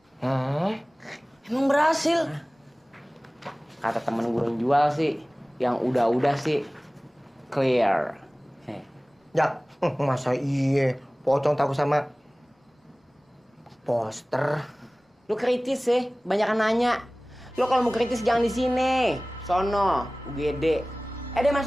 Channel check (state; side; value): normal; both; correlation 0.98